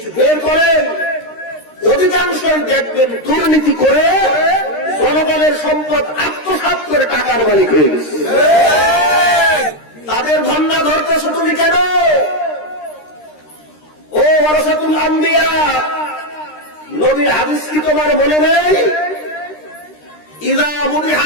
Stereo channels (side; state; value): right; late; 13 ms